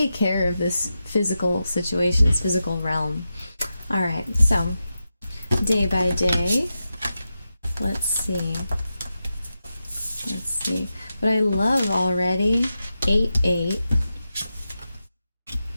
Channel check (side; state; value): both; inverted; correlation -0.90